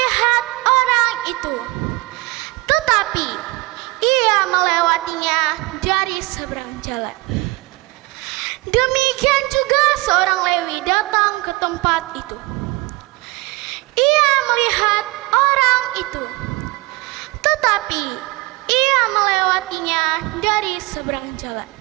orang itu, tetapi ia melewatinya dari seberang jalan. Demikian juga seorang Lewi datang ke tempat itu. Ia melihat orang itu, tetapi ia melewatinya dari seberang jalan.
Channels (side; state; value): left; quieter; 22.7 dB